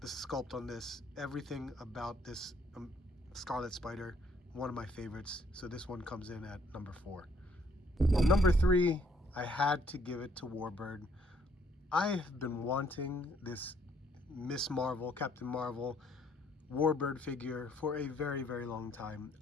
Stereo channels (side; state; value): both; normal; correlation 0.66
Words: the sculpt on this, everything about this Scarlet Spider, one of my favorites. So this one comes in at number 4. Number 3, I had to give it to Warbird. I have been wanting this Miss Marvel, Captain Marvel, Warbird figure for a very, very long time.